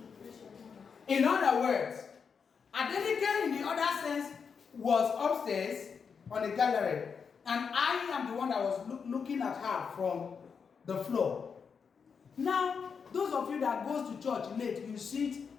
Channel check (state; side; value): quieter; right; 6.1 dB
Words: In other words, Adenike in the other sense was upstairs on the gallery, and I am the one that was looking at her from the floor. Now, those of you that goes to church late, you sit